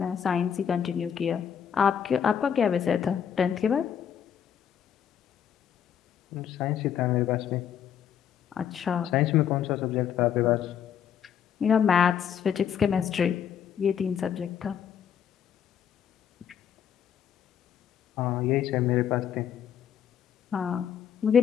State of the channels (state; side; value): quieter; right; 8.6 dB